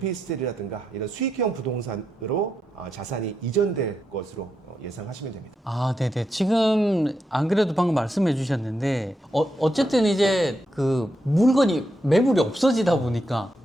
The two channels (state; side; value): normal; both; correlation 0.83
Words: 이런 수익형 부동산으로 자산이 이전될 것으로 예상하시면 됩니다. 네네. 지금 안 그래도 방금 말씀해 주셨는데 어쨌든 이제 그 물건이 매물이 없어지다 보니까